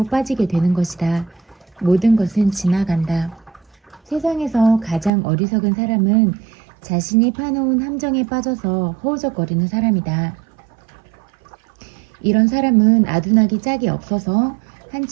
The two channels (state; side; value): drops out; left; at 5.1 s